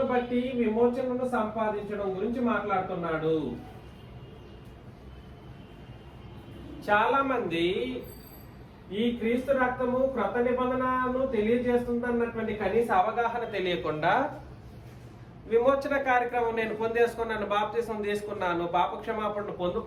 బట్టి విమోచనను సంపాదించడం గురించి మాట్లాడుతున్నాడు. చాలా మంది ఈ క్రీస్తు రక్తము క్రొత్త నిబంధనను తెలియజేస్తుందన్నటువంటి కనీస అవగాహన తెలియకుండా విమోచన కార్యక్రమం నేను పొందేసుకున్నాను, బాప్తిసం తీసుకున్నాను, పాప క్షమాపణను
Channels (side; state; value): both; identical; correlation 1.00